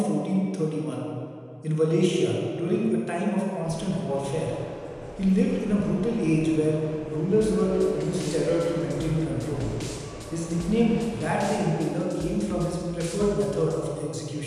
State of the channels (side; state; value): both; identical; correlation 1.00